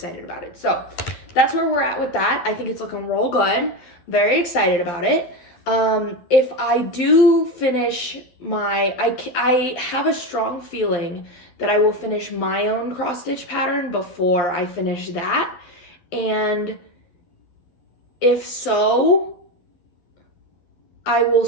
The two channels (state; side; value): late; right; 12 ms